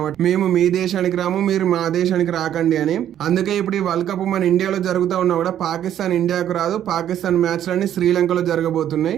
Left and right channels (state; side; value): quieter; left; 10.8 dB